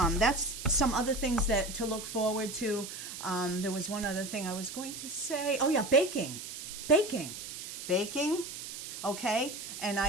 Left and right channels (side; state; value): right; noise; hiss, 9 dB below the sound